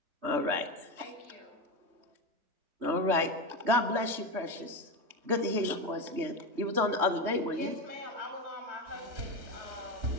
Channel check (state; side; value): late; left; 3.2 ms